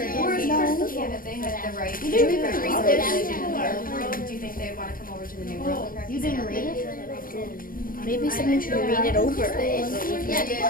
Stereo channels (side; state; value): right; late; 0.41 ms